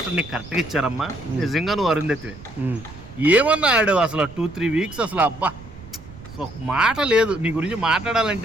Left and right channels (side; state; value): right; noise; rumble, 17 dB below the sound